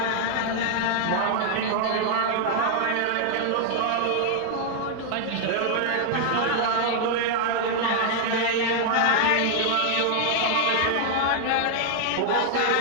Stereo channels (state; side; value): different; both; correlation 0.00